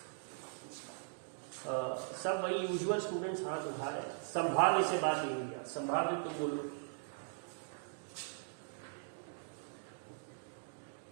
सब वही यूजुअल स्टूडेंट्स हाथ उठा रहे हैं। संभाव्य से बात नहीं हुई, संभाव्य तुम बोलो।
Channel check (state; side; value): silent; left; digital silence